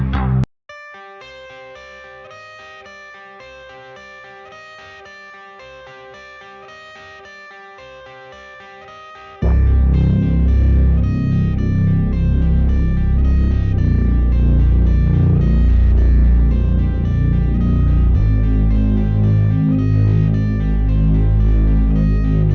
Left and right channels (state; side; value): identical; both; correlation 1.00